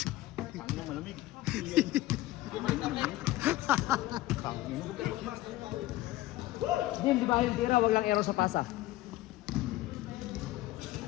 Boom, di ba yung tira? Wag lang arrow sa pasa.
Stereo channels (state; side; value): quieter; right; 16.6 dB